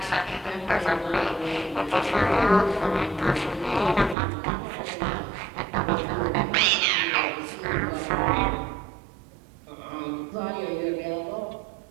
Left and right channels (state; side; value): drops out; left; at 4.2 s